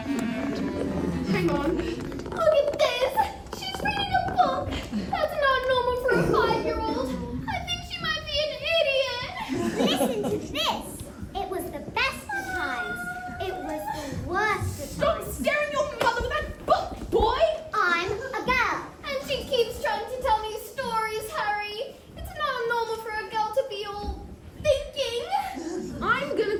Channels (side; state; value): both; identical; correlation 1.00